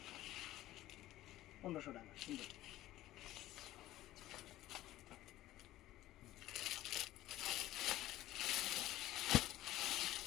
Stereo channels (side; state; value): right; quieter; 15.3 dB